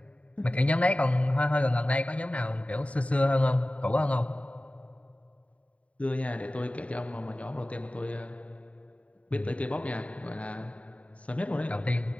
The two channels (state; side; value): late; right; 0.066 ms